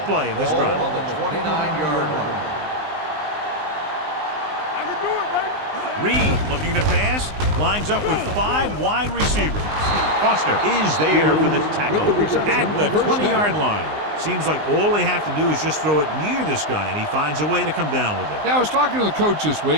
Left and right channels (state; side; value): late; left; 19 ms